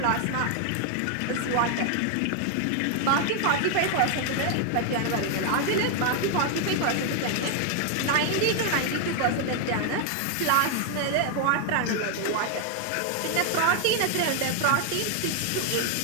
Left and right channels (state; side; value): different; both; correlation 0.00